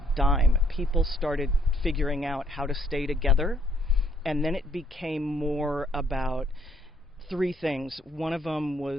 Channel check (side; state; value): both; normal; correlation 0.68